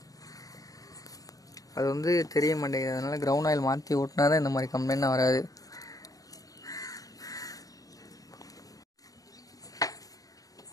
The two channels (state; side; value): late; right; 0.17 ms